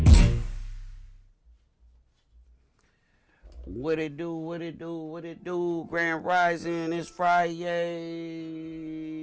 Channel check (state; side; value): identical; both; correlation 1.00